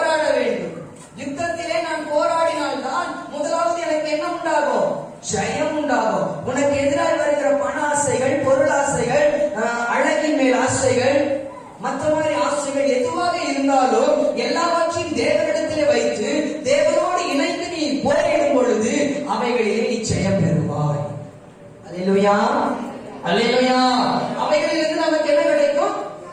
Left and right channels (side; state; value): both; identical; correlation 1.00